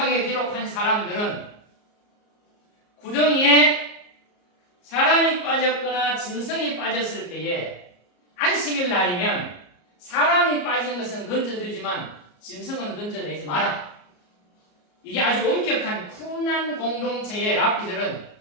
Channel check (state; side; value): late; right; 34 ms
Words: 기록한 사람들은 구덩이에 사람이 빠졌거나 짐승이 빠졌을 때에 안식일 날이면 사람이 빠진 것은 건져주지만 짐승은 건져내지 마라. 이게 아주 엄격한 쿰난 공동체의 랍비들은